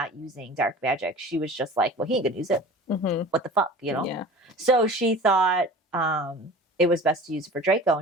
using dark magic, she was just like, well, he ain't gonna use it. What the fuck, you know? Yeah. So she thought it was best to use it for Draco.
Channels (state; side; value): normal; both; correlation 0.40